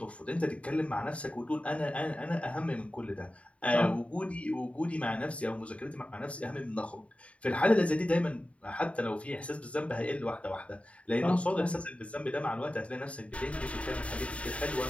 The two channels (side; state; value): right; late; 0.064 ms